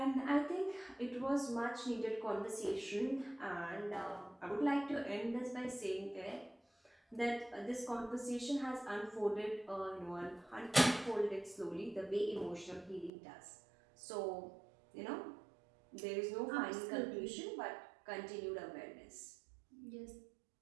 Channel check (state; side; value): drops out; left; at 13.1 s